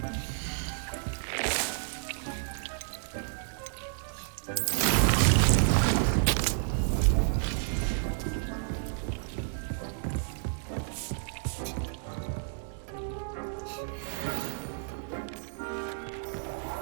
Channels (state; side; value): silent; left; digital silence